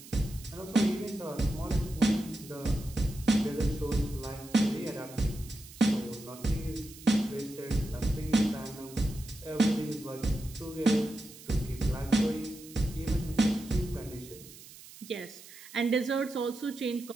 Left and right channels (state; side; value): noise; right; hiss, 18 dB below the sound